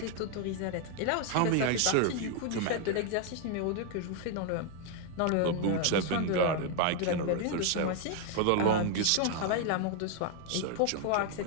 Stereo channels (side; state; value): both; different; correlation 0.01